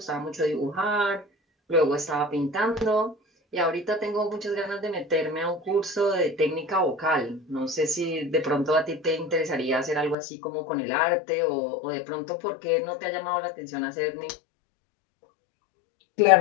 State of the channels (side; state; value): right; drops out; at 10.2 s